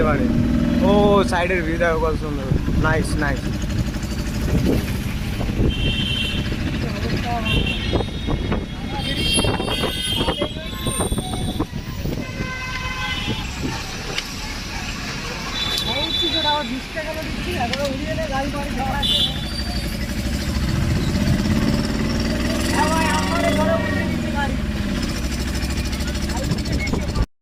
পারে। ও সাইডের ভিউ দেখো কত সুন্দর, নাইস নাইস। গাড়ি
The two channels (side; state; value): both; identical; correlation 1.00